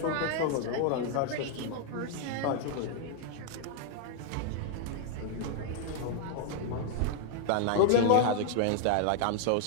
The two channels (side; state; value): both; different; correlation 0.00